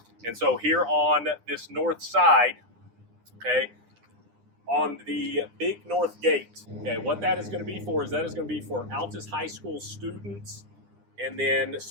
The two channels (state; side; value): late; left; 9.9 ms